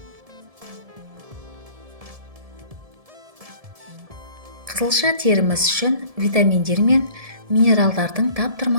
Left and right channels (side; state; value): left; late; 1.7 ms